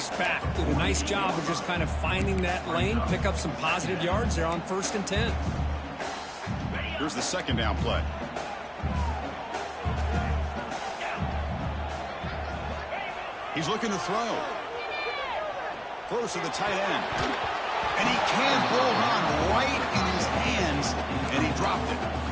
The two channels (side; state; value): both; identical; correlation 1.00